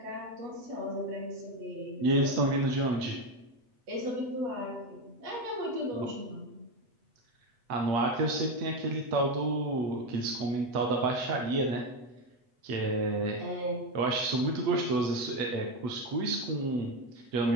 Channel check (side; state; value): left; late; 8.1 ms